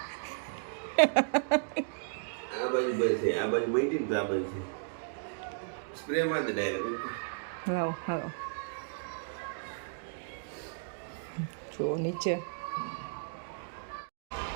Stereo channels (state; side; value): silent; left; digital silence